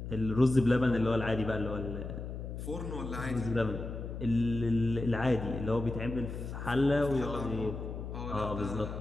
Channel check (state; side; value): noise; left; hum, 7 dB below the sound